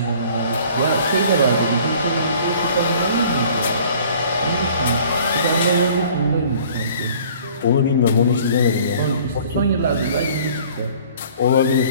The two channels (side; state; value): both; inverted; correlation -0.52